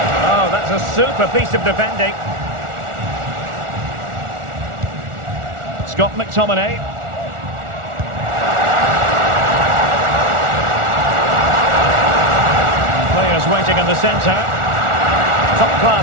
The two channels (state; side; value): late; left; 1.4 ms